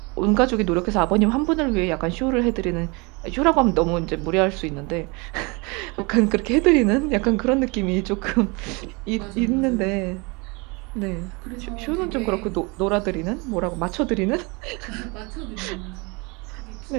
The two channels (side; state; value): left; quieter; 28.4 dB